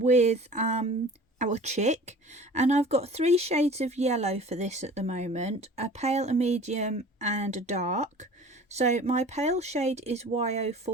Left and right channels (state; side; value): normal; both; correlation 0.43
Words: our chick, and I've got 3 shades of yellow for this at the moment: a pale, a medium and a dark. So my pale shade is